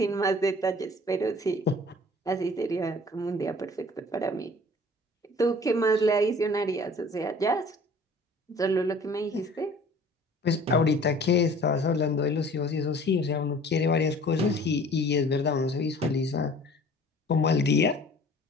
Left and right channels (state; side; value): normal; both; correlation 0.49